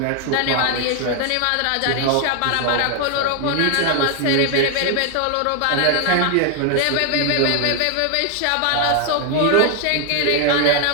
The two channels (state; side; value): different; both; correlation 0.00